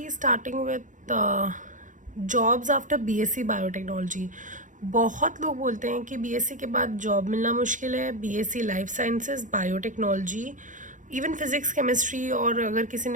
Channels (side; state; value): left; late; 0.37 ms